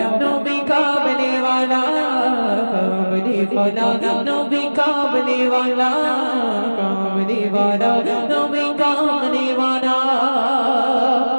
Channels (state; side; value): inverted; both; correlation -1.00